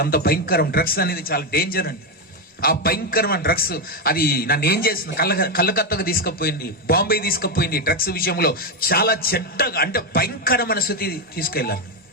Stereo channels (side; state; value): both; normal; correlation 0.07